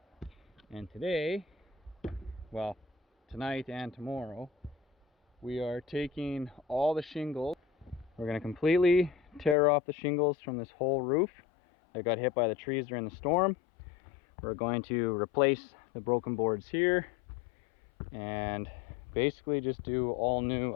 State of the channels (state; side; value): drops out; right; at 9.6 s